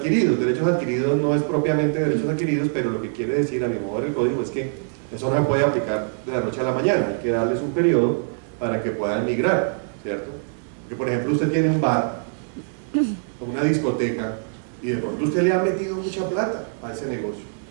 Derechos adquiridos no es propiamente derechos adquiridos, pero lo que quiere decir a mi modo del código es que eso no se puede aplicar de la noche a la mañana, hay que darles un periodo para que puedan migrar, ¿cierto? Porque por ejemplo usted tiene un bar o una discoteca y de pronto usted le ha metido mucha plata a ese negocio,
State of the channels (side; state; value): left; silent; digital silence